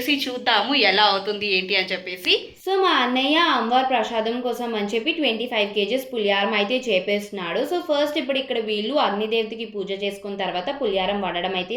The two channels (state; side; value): identical; both; correlation 1.00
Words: చూద్దాము ఎలా అవుతుంది ఏంటి అని చెప్పేసి. సో మా అన్నయ్య అమ్మవారి ప్రసాదం కోసం అని చెప్పి 25 kgs పులిహారం అయితే చేపేస్తున్నాడు. సో ఫస్ట్ ఇప్పుడు ఇక్కడ వీళ్ళు అగ్నిదేవతకి పూజ చేసుకున్న తర్వాత పులిహారం వండడం అయితే